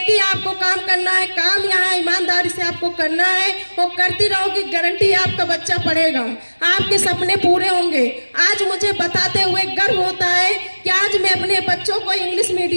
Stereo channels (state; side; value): inverted; both; correlation -1.00